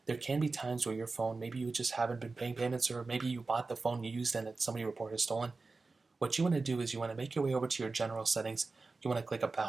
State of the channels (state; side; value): quieter; left; 3.9 dB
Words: there can be times where your phone, maybe you just haven't been paying payments, or maybe you bought the phone you used and somebody reported stolen. What you want to do is you want to make your way over to your general settings. You want to click